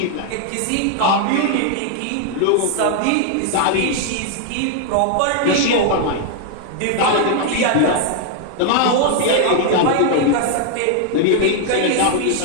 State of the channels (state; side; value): different; both; correlation 0.00